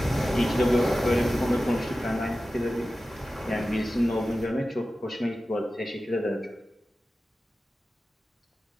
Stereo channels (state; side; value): normal; both; correlation 0.94